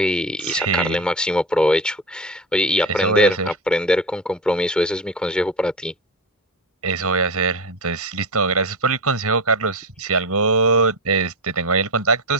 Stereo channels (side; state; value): both; normal; correlation 0.20